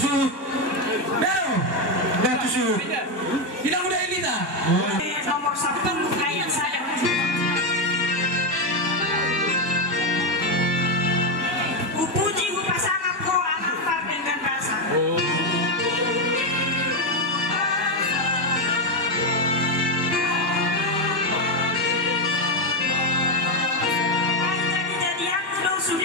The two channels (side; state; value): left; late; 1.2 ms